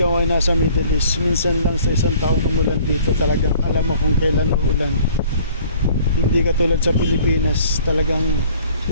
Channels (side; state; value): both; inverted; correlation -0.54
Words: ay nasa Middle East, minsan lang sa isang taon umulan dito, talagang alam mo kung kailan uulan. Hindi katulad sa Pilipinas, talagang